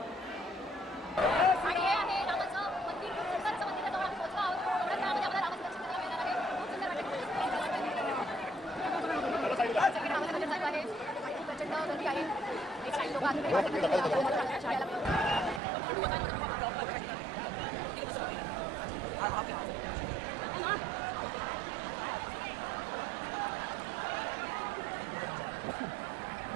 आणि हे आहे रामाचं मंदिर. खूप सुंदर असं मंदिर आहे. जवळ आम्ही पोहोचलो आहोत. एवढ्या वेळामध्ये आम्हाला रामाचं दर्शन करायला मिळणार आहे. खूप सुंदर वाटतं. सगळे रामाचं दर्शन चालू आहे. खूप प्रचंड गर्दी आहे. एक काही लोक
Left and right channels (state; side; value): drops out; left; at 15.6 s